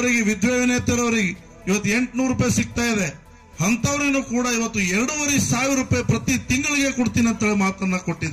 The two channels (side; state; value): both; identical; correlation 1.00